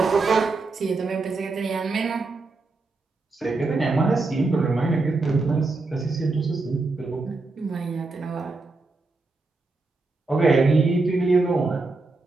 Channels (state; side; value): quieter; left; 3.5 dB